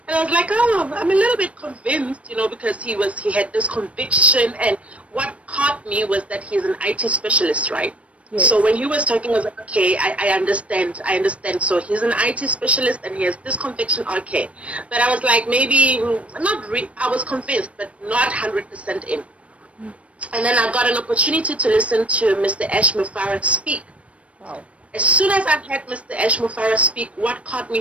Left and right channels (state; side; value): late; left; 0.063 ms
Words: And I was like, oh, I'm a little bit convinced, you know, because he had this conviction. And what caught me was that he's an IT specialist, right? Yes. So when he was talking, I was like, okay, I understand. So he's an IT specialist and he has this conviction, okay. But I was like, maybe, I was convinced, but not 100% in. And then I got an opportunity to listen to Mr. Ash Mufareh speak. Wow. As soon as I heard Mr. Ash Mufareh speak, what caught